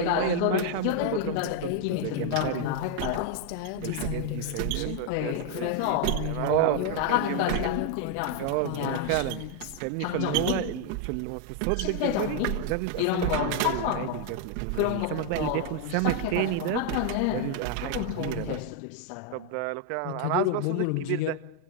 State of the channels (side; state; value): both; different; correlation 0.00